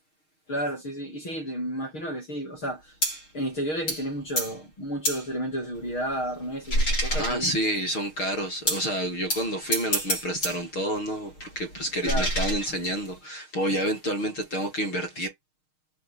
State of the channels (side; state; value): right; late; 6.4 ms